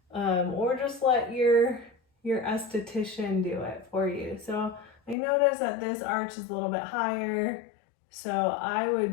or just let your esthetician do it for you. So I noticed that this arch is a little bit higher, so I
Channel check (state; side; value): drops out; right; at 5.2 s